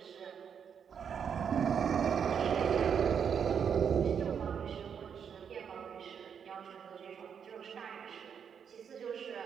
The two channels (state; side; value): quieter; left; 7.4 dB